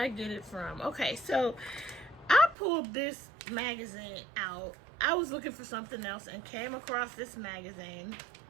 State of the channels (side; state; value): left; drops out; at 2.6 s